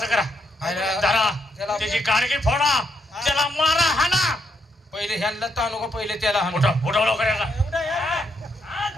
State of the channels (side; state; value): both; normal; correlation 0.77